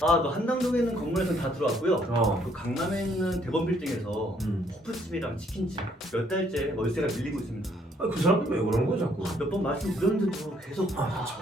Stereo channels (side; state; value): both; normal; correlation 0.66